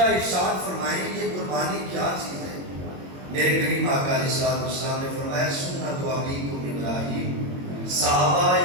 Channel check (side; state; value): left; late; 22 ms